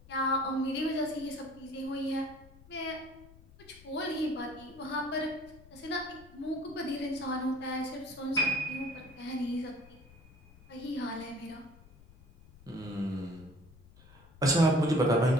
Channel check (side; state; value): left; noise; rumble, 23 dB below the sound